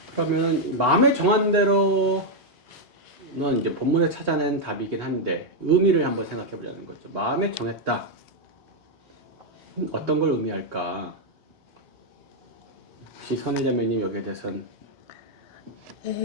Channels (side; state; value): both; normal; correlation 0.00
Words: 그러면 마음에 정한 대로는 이제 본문에 찾아낸 답이긴 한데 의미를 한번 생각해 보자는 거죠. 마음에 정했다. 어떤 걸 의미할까? 혹시 선혜자매님 여기에 대해서는?